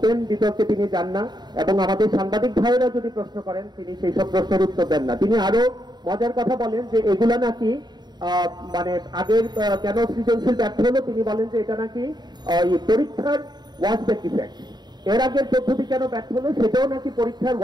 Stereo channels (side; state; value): left; late; 0.20 ms